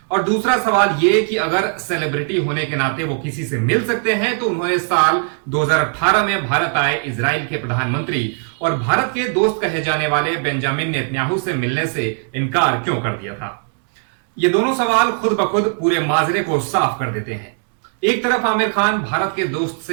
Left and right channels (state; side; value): silent; left; 57 dB below the other